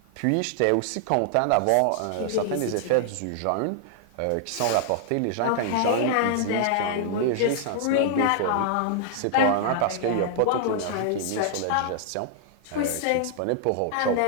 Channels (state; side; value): different; both; correlation -0.01